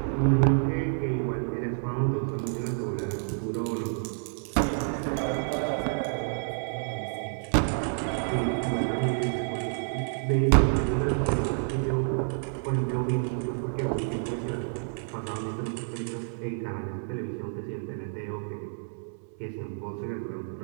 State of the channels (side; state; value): left; silent; 59 dB below the other